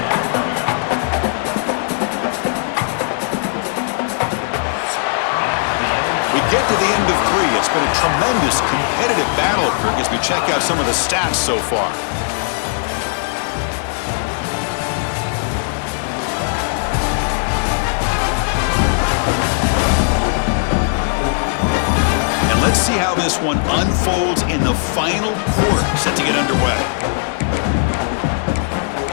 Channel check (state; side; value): silent; right; digital silence